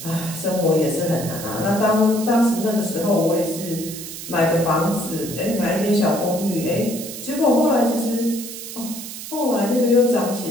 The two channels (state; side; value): noise; right; hiss, 10 dB below the sound